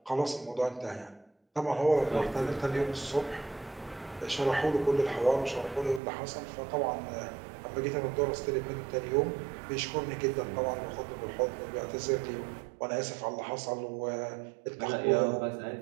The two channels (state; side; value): drops out; left; at 6.0 s